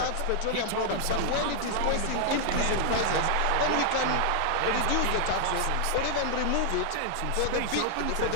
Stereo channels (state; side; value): different; both; correlation 0.00